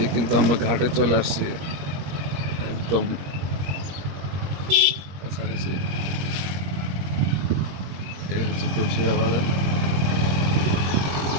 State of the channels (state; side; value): late; left; 21 ms